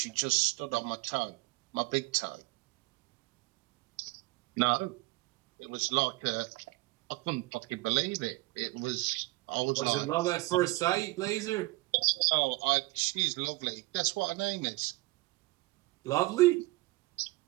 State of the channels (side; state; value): left; quieter; 21.5 dB